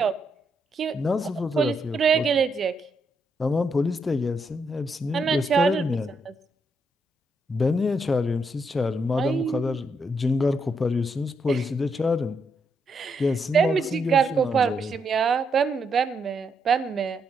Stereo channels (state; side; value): normal; both; correlation 0.79